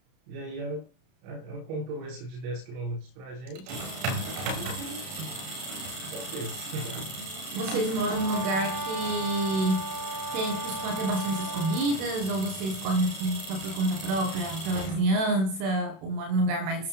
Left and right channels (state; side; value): late; left; 32 ms